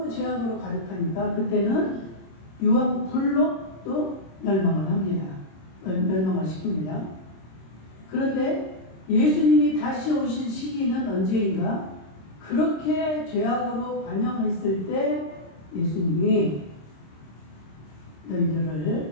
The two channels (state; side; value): late; right; 26 ms